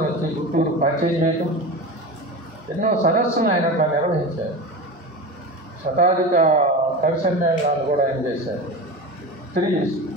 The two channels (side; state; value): both; normal; correlation 0.27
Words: వచ్చి గుంటూరు పరిచయం చేయటం, ఎన్నో సదస్సులు ఆయన అట్లా నిర్వహించారు. శతాధిక కవి సమ్మేళనాలు కూడా ఆయన చేశారు.